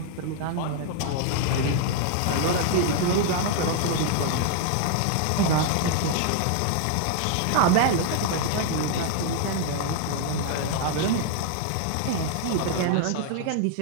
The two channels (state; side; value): different; both; correlation 0.00